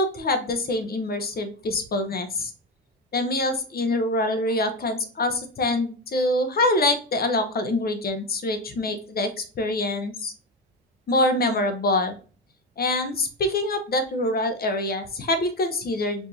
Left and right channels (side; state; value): both; normal; correlation 0.13